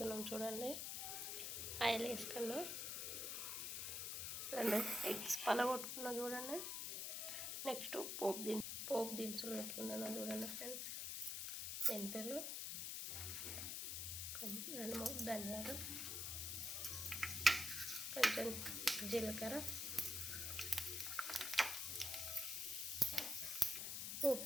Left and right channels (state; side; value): noise; left; hiss, 3 dB below the sound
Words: చూడండి, ఆయిల్ వేసుకున్నా, 2 ఎగ్స్ పలగొట్టుకున్నా. చూడండి, నెక్స్ట్ పోపు దినుసులు పెట్టుకున్నాను. చూడండి ఫ్రెండ్స్, మెంతులు, 2-3 ధనియాలు, కొంచెం జీలకర్ర, పోపు